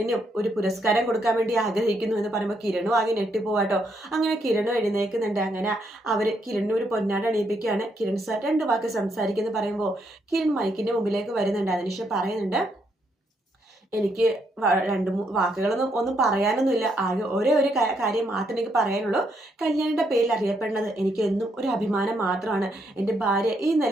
ഒരു പുരസ്കാരം കൊടുക്കാൻ വേണ്ടി ആഗ്രഹിക്കുന്നു എന്ന് പറയുമ്പോൾ കിരണും ആകെ ഞെട്ടിപ്പോവാട്ടോ. അങ്ങനെ കിരണും എഴുന്നേൽക്കുന്നുണ്ട്. അങ്ങനെ അവർ കിരണിന് ഒരു പൊന്നാട് അണിയിപ്പിക്കുകയാണ്. കിരൺ സാർ 2 വാക്ക് സംസാരിക്കുന്നു പറയുമ്പോൾ കിരൺ മൈക്കിന്റെ മുമ്പിലേക്ക് വരുന്നുണ്ട്. അതിനുശേഷം പറയുന്നുണ്ട്, എനിക്ക് 2-3 വാക്കുകളൊന്നും പറയാനൊന്നുമില്ല. ആകെ ഒരേ ഒരു കാര്യം മാത്രമേ എനിക്ക് പറയാനുള്ളൂ. കല്യാണിയുടെ പേരിൽ അറിയപ്പെടുന്നത് എനിക്ക് എന്നും ഒരു അഭിമാനം മാത്രമാണ്. എൻ്റെ ഭാര്യ ഈ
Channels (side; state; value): both; normal; correlation 0.76